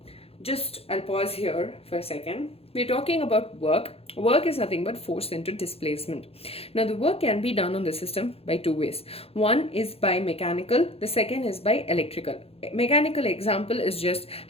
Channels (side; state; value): right; late; 0.29 ms